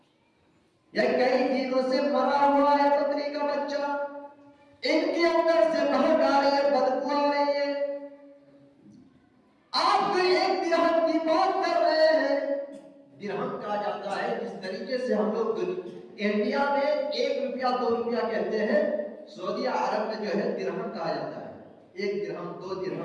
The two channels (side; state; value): both; identical; correlation 1.00